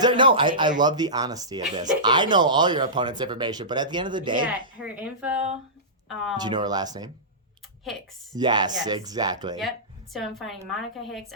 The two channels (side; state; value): both; normal; correlation -0.19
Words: love the honesty of this. I know all your opponent's information, but at the end of the day. Yeah, her info. Do you know her last name? Hicks. Yes, exactly. Yep. So I'm fighting Monica Hicks.